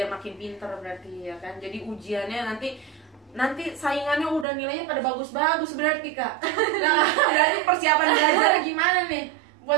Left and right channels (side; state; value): left; drops out; at 4.5 s